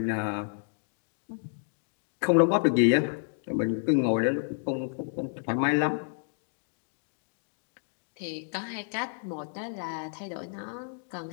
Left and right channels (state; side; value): silent; right; digital silence